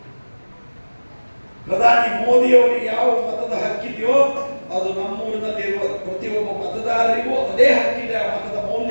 ಪ್ರಧಾನಿ ಮೋದಿ ಅವರಿಗೆ ಯಾವ ಮತದ ಹಕ್ಕಿದೆಯೋ ಅದು ನಮ್ಮೂರಿನಲ್ಲಿರುವ ಪ್ರತಿಯೊಬ್ಬ ಮತದಾರರಿಗೂ ಅದೇ ಹಕ್ಕಿದೆ. ಆ ಮತದ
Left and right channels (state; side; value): inverted; both; correlation -1.00